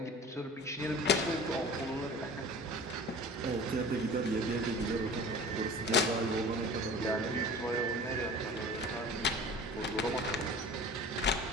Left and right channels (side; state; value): both; normal; correlation 0.40